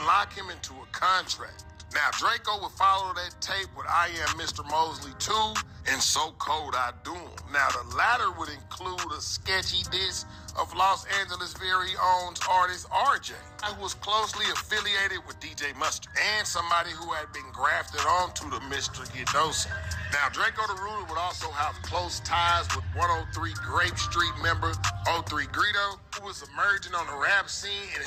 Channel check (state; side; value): identical; both; correlation 1.00